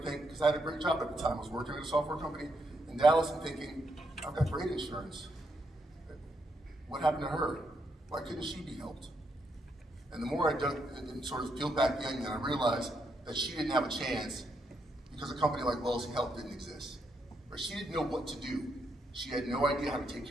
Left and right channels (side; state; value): both; normal; correlation 0.79